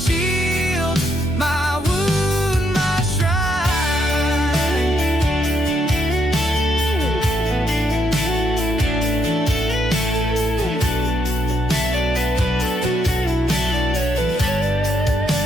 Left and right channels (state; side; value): normal; both; correlation 0.76